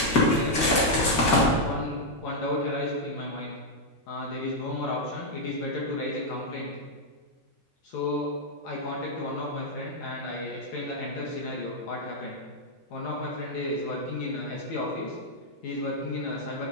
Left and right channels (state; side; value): normal; both; correlation -0.03